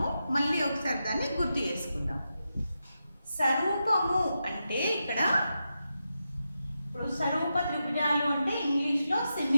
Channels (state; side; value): inverted; both; correlation -0.88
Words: మళ్ళీ ఒకసారి దాన్ని గుర్తు చేసుకుందాం. స్వరూపము అంటే ఇక్కడ ఇప్పుడు స్వరూప త్రిభుజాలు అంటే ఇంగ్లీష్లో